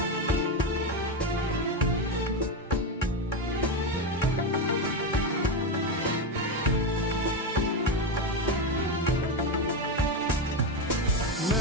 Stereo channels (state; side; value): normal; both; correlation 0.12